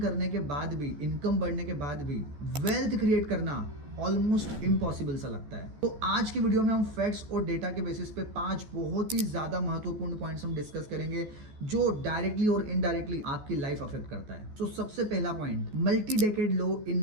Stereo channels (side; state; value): left; late; 14 ms